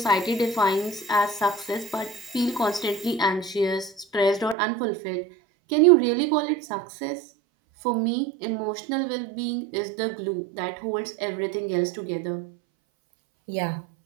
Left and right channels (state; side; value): drops out; left; at 4.5 s